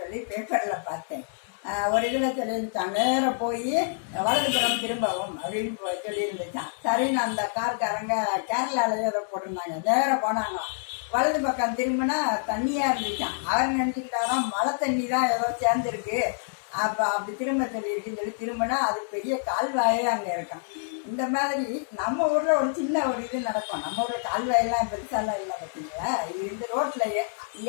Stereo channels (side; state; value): right; silent; digital silence